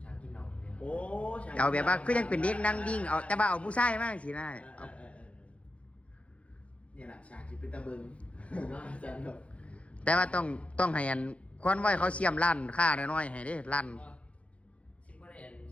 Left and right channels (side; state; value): right; late; 0.063 ms